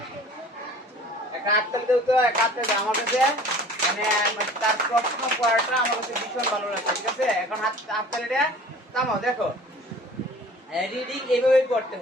আমার কাছে মানে তার প্রশ্ন পড়াটা আমার কাছে ভীষণ ভালো লাগছে। ঠিক আছে, এখন হাততালিটা থামাও। দেখো রিডিং এইভাবে করতে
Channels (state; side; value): normal; both; correlation 0.47